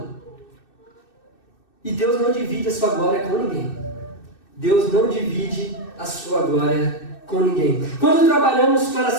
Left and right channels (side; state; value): right; late; 2.6 ms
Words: E Deus não divide a sua glória com ninguém. Deus não divide a sua glória com ninguém. Quando trabalhamos para